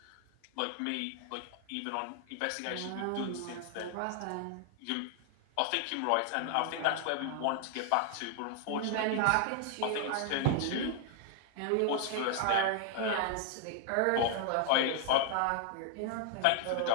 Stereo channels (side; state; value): both; different; correlation 0.00